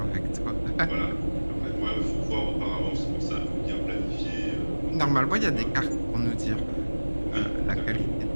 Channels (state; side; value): inverted; both; correlation -1.00